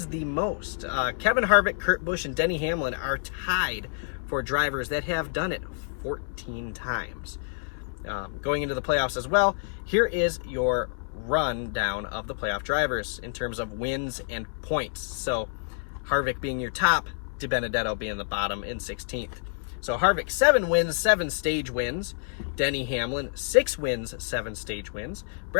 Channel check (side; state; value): right; silent; digital silence